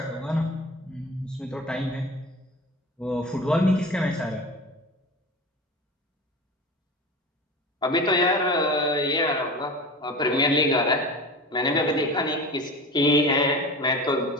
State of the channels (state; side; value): normal; both; correlation 0.32